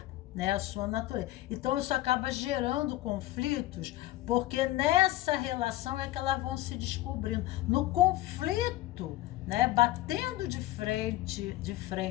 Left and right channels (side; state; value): right; quieter; 16.6 dB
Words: né? A sua natureza. Então, isso acaba gerando conflitos, porque nessa relação é que elas vão se descobrindo. No conflito, né? Batendo de frente,